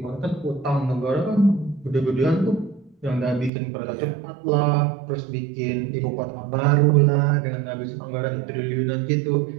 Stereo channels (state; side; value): drops out; left; at 3.5 s